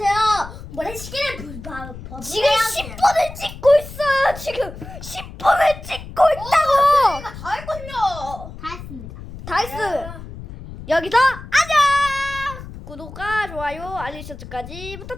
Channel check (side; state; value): left; noise; rumble, 13 dB below the sound